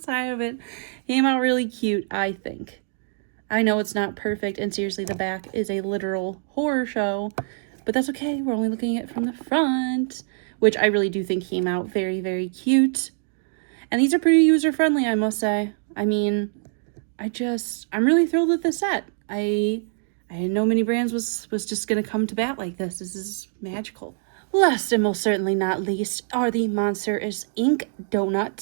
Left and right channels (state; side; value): silent; left; digital silence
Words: side of it came out really cute, I think. I know it's not perfect, and seriously, the back is a literal horror show, but that's okay. We're only looking at it from the front, which I really do think came out very, very cute. And these are pretty user-friendly, I must say. I mean, I'm really thrilled with this set. I didn't know Mini Brands was just going to come to bat like this. This is magical. Last and most certainly not least are the Monsters Inc.